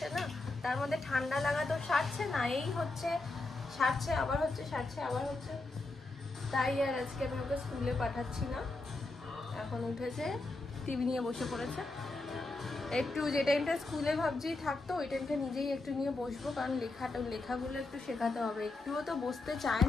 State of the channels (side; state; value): right; quieter; 3.1 dB